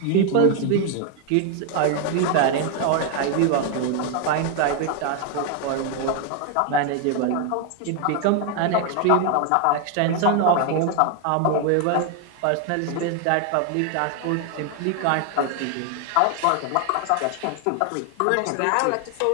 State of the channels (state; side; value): different; both; correlation 0.01